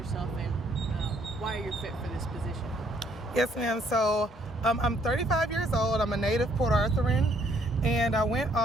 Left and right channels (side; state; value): both; normal; correlation 0.67